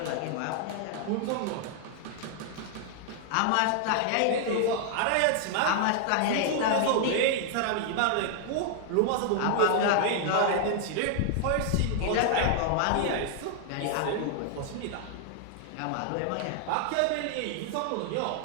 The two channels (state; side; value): different; both; correlation 0.00